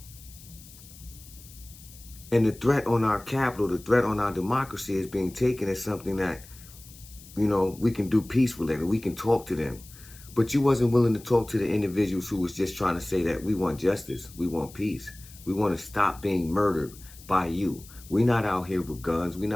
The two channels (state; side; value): noise; left; hiss, 20 dB below the sound